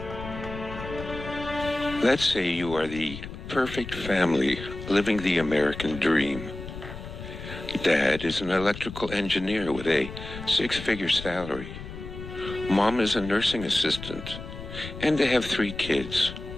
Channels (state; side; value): noise; left; rumble, 11 dB below the sound